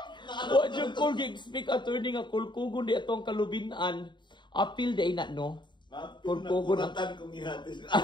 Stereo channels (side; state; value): right; late; 0.22 ms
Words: Wa jud ko gi-speak attorney nga kulkugon di atong kalubinan. Apil di na no. Kulkugon ang kong ihatis.